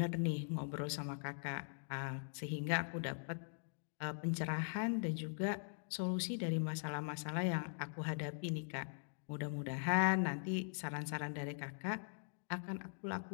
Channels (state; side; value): silent; right; digital silence